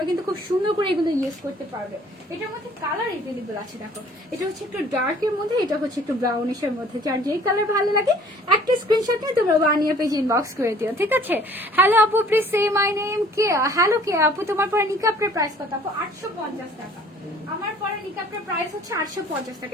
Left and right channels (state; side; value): normal; both; correlation 0.53